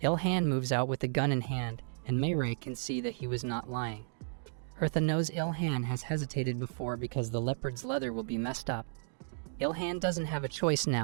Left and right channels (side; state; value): left; silent; digital silence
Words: Ilhan moves out with the gun in hand, and Meirei can see that he was not lying. Eartha knows Ilhan has hesitated before because the leopard's leather will be messed up. Ilhan doesn't have a choice